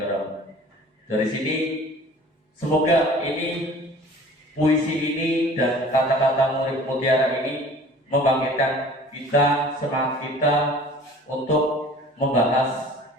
Dari sini, semoga puisi ini dan kata-kata murid mutiara ini membangkitkan kita, semangat kita untuk membahas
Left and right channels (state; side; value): normal; both; correlation 0.47